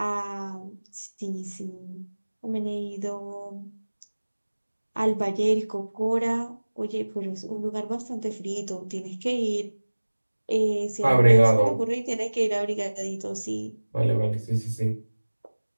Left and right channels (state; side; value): inverted; both; correlation -1.00